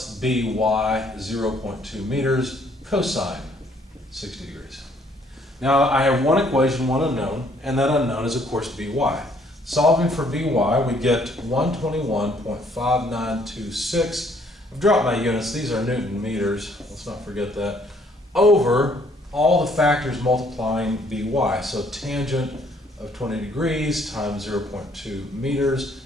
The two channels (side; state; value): both; normal; correlation 0.64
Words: By 0.2 meters cosine 60 degrees. Now I have one equation, one unknown, and that unknown is of course By. Solving for By, we get 121.5926. I've dropped my units, these are Newton meters, let's not forget that, over all the factors multiplying By. So tangent of 20 degrees times 0.2 meters